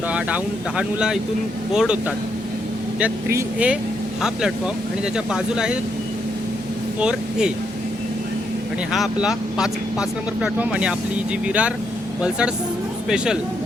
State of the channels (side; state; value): both; normal; correlation 0.78